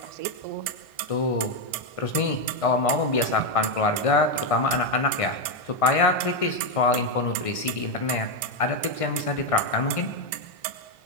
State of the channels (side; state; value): right; late; 1.6 ms